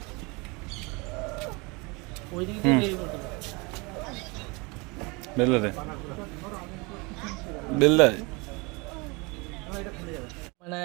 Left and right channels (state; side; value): quieter; left; 27.5 dB